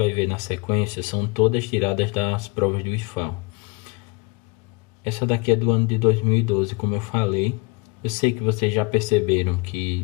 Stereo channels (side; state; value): right; quieter; 26.7 dB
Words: ver na sequência são todas tiradas das provas do IFAL. Essa daqui é do ano de 2012, como eu falei. Eu sei que vocês já perceberam